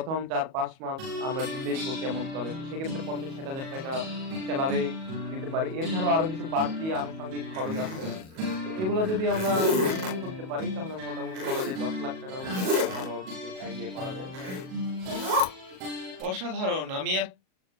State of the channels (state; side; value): late; left; 37 ms